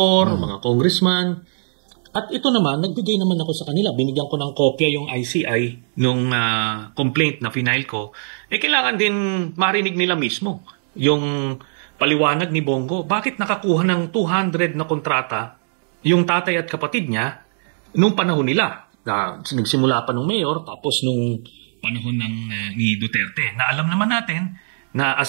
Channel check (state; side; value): silent; left; digital silence